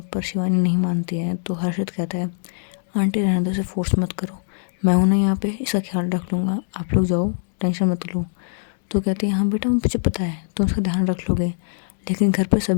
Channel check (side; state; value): right; silent; digital silence